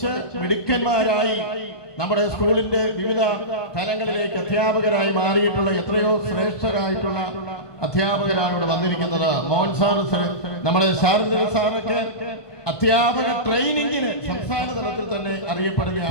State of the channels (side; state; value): right; late; 1.5 ms